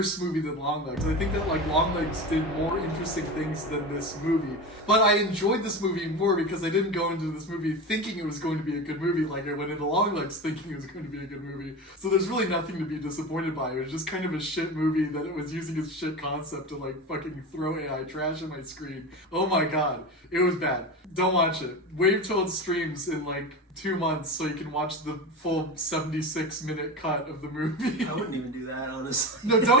movie than Longlegs. I think that like Longlegs did more interesting things than this movie. But I enjoyed this movie more because I didn't go into this movie thinking it was going to be a good movie like I went into Longlegs thinking it was going to be a good movie. So there's really nothing to be disappointed by. It was just kind of a shit movie that it was using its shit concept to like fucking throw AI trash on my screen. Oh my god. It was bad. Don't watch it. Wait till it streams in like 2 months so you can watch the full 76-minute cut of the movie. I wouldn't even do that, honestly. No,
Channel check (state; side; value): normal; both; correlation 0.25